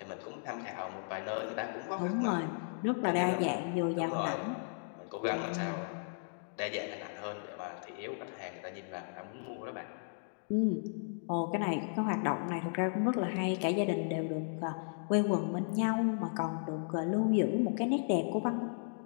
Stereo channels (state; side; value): silent; right; digital silence